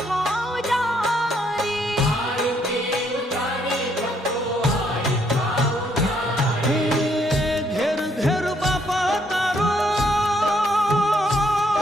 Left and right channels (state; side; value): normal; both; correlation 0.70